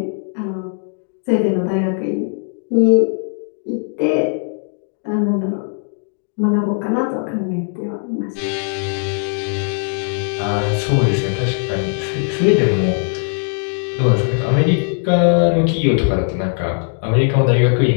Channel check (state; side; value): silent; right; 62 dB below the other